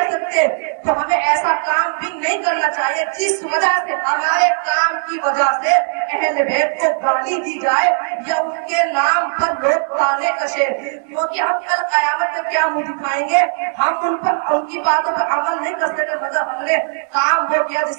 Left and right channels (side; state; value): left; silent; digital silence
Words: سکتے تو ہمیں ایسا کام بھی نہیں کرنا چاہیے جس وجہ سے ہمارے کام کی وجہ سے اہل بیت کو گالی دی جائے یا ان کے نام پر لوگ تانے کشے. کیونکہ ہم کل قیامت میں کیا منہ دکھائیں گے؟ ہم ان کی باتوں پر عمل نہیں کر سکتے مگر ہم نے کام وہ کیا